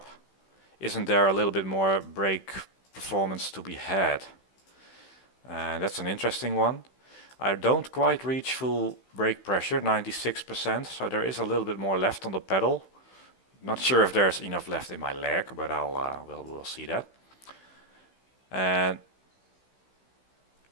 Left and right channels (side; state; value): right; late; 16 ms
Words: isn't there a little bit more brake performance to be had? That's an interesting one. I don't quite reach full brake pressure, 96%, so there is a little bit more left on the pedal. Not sure if there's enough left in my leg, but we'll see that. And